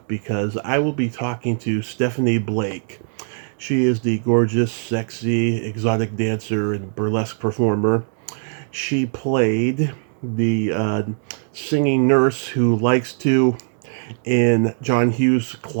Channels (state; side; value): silent; left; digital silence